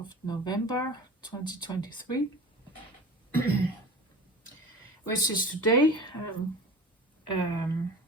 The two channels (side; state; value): both; normal; correlation 0.36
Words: November 2023, which is today.